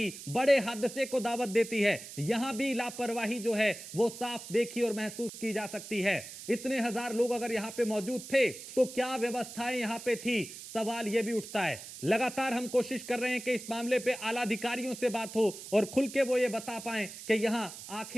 बड़े हादसे को दावत देती है। यहां भी लापरवाही जो है वो साफ देखी और महसूस की जा सकती है। इतने हजार लोग अगर यहां पे मौजूद थे तो क्या व्यवस्थाएं यहां पे थी, सवाल यह भी उठता है। लगातार हम कोशिश कर रहे हैं कि इस मामले पे आला अधिकारियों से बात हो और खुल के वो ये बता पाएं कि यहां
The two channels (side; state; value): right; noise; hiss, 12 dB below the sound